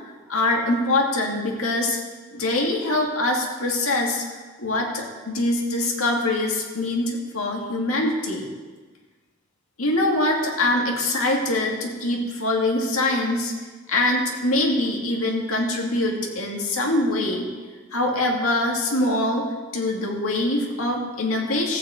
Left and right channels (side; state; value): both; normal; correlation 0.23